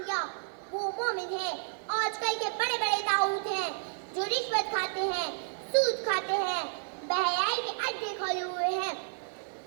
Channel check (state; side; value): silent; left; digital silence